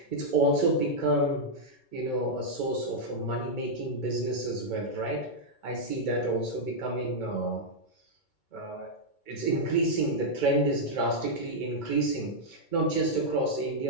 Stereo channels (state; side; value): late; right; 2.2 ms